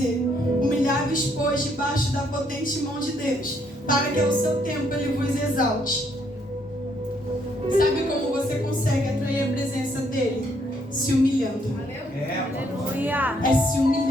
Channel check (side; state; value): both; normal; correlation 0.70